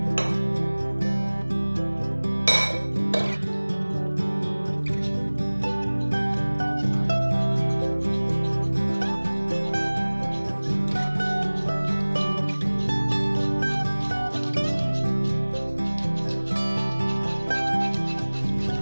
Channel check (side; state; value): both; inverted; correlation -1.00